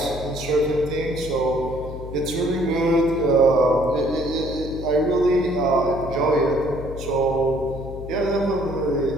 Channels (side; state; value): left; noise; hum, 11 dB below the sound